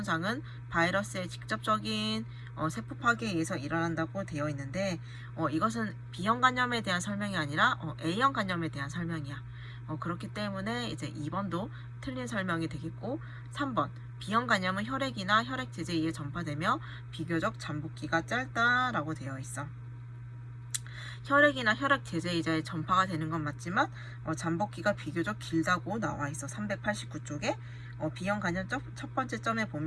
바이러스의 직접적인 세포 파괴에 의해서 일어난다고 되어 있는데 이것은 B형 간염에 대한 설명이 아니라 A형 간염에 대한 설명이야. 그렇기 때문에 이제 2번도 틀린 설명이 되겠고 3번 B형 간염은 혈액이나 혈액제제에 의해 전파되며 비교적 잠복기가 짧다라고 되어 있어. 혈액이나 혈액제제에 의해 전파가 되는 건 맞지만 잠복기가 비교적 길다고 나와 있어. 389쪽에 B형 간염 첫 번째 점에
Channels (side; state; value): both; identical; correlation 1.00